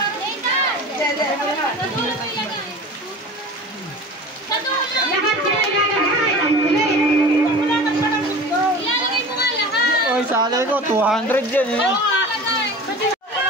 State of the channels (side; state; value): both; normal; correlation 0.37